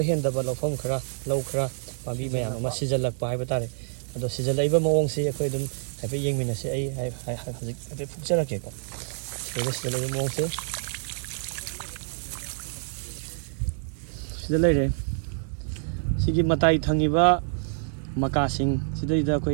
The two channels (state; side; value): silent; left; digital silence